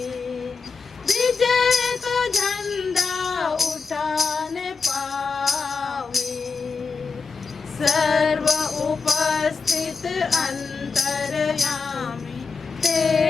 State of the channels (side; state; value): right; quieter; 4.9 dB